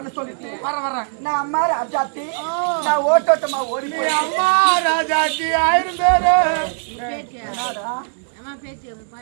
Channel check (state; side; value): silent; left; 66 dB below the other